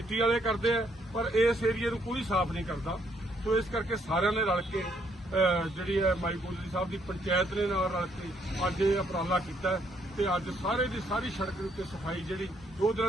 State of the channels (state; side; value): normal; both; correlation 0.71